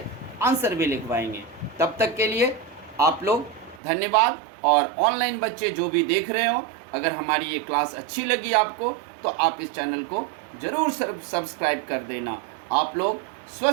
आंसर भी लिखवाएंगे। तब तक के लिए आप लोग धन्यवाद। और ऑनलाइन बच्चे जो भी देख रहे हो, अगर हमारी ये क्लास अच्छी लगी आपको तो आप इस चैनल को ज़रूर सब्सक्राइब कर देना। आप लोग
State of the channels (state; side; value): drops out; left; at 3.8 s